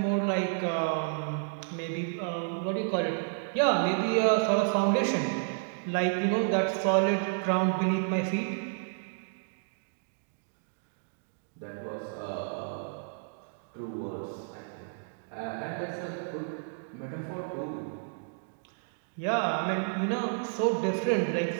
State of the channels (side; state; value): left; silent; digital silence